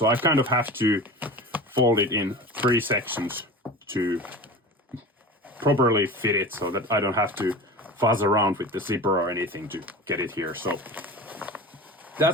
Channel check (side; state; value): both; normal; correlation 0.32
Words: I kind of have to fold it in 3 sections to properly fit it so that I don't have to fuzz around with the zipper or anything to get it here. So